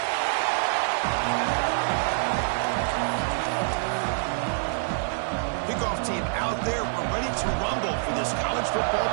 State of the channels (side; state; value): left; silent; digital silence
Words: Kickoff team out there. We're ready to rumble for this college football